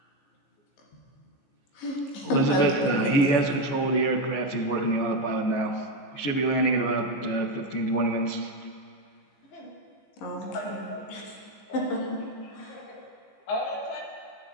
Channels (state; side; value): late; right; 15 ms